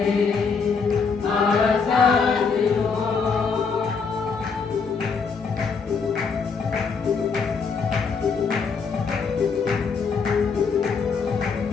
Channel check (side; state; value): right; quieter; 5.3 dB